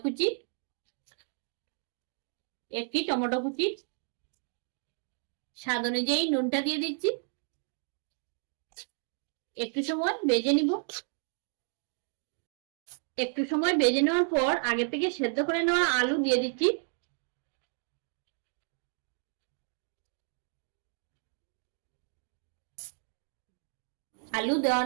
কুচি, একটি টমেটো কুচি। স্বাদ অনুযায়ী নুনটা দিয়ে দিচ্ছি। একটু সময় ভেজে নিব। একটু সময় ভেজে নেওয়ার পর আগে থেকে সেদ্ধ করে নেওয়া আলু দিয়ে দিচ্ছি। আলু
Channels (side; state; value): left; silent; 56 dB below the other